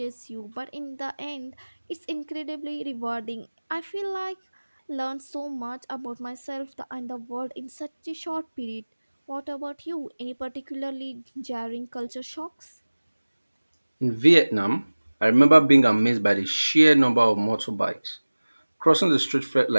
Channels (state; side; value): inverted; both; correlation -1.00